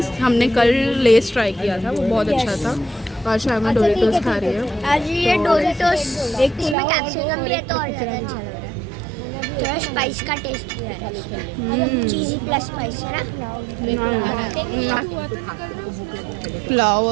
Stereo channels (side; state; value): left; drops out; at 6.8 s